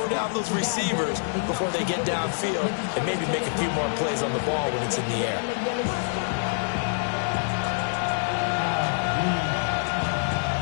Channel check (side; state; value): right; silent; digital silence